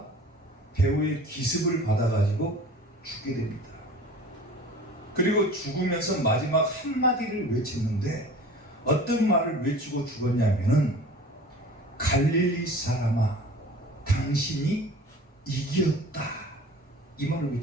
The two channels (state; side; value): normal; both; correlation 0.42